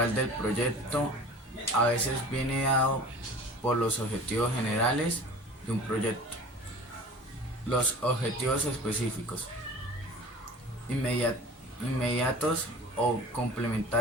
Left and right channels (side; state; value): both; normal; correlation 0.41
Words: del proyecto. A veces viene dado por los objetivos generales de un proyecto. Los objetivos específicos, inmediatos o